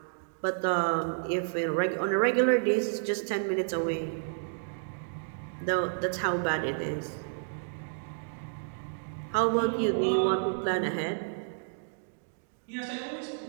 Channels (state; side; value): silent; left; digital silence